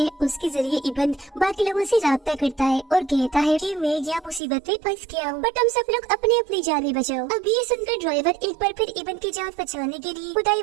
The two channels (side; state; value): left; drops out; at 4.4 s